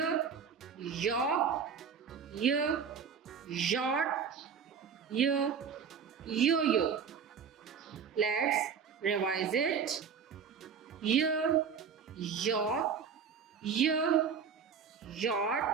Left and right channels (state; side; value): quieter; left; 6.6 dB